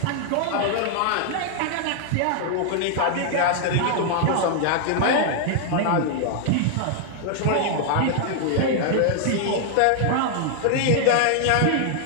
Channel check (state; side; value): different; both; correlation 0.00